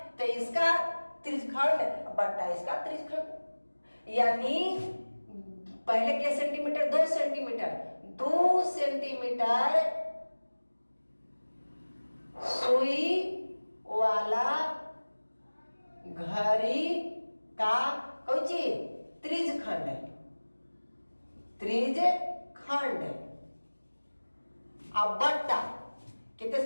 तो इसका त्रिज्यखंड बट्टा इसका त्रिज्यखंड, यानी पहले के सेंटीमीटर 2 सेंटीमीटर, 2 सेंटीमीटर सुई वाला घड़ी का कौन चीज? त्रिज्यखंड। त्रिज्यखंड अब बट्टा कितने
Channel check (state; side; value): inverted; both; correlation -1.00